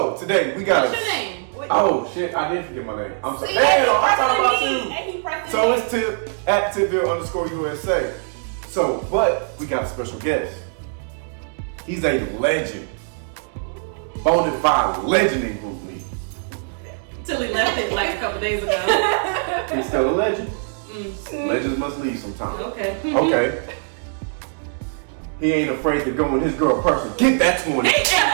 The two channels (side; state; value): left; silent; 64 dB below the other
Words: today we got What's your name? Oh shit, I did forget my name. I'm sorry. See, Damn, I'm talking about you. And he pressed So it's Tip at Tipville _USA. So, but we got a special guest. He's a legend. Bona fide legend in Group Me. Till he left it like a couple days ago. He's still a legend. Legends must leave sometime. Okay. Okay. He ain't afraid to go in his girl person. Get that 20. He ain't